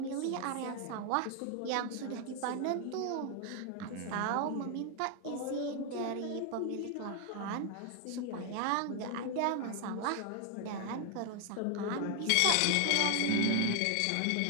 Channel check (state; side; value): different; both; correlation 0.00